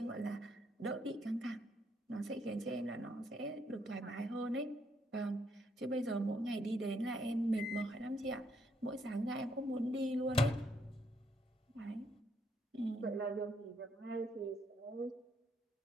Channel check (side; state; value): both; normal; correlation 0.73